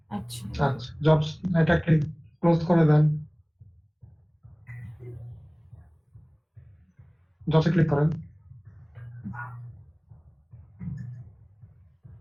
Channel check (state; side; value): identical; both; correlation 1.00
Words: আচ্ছা, আচ্ছা, জবস, এটাকে ক্লোজ করে দেন, জবসে ক্লিক করেন।